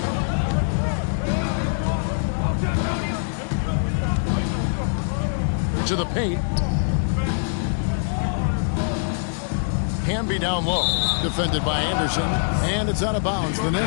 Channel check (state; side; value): silent; right; 63 dB below the other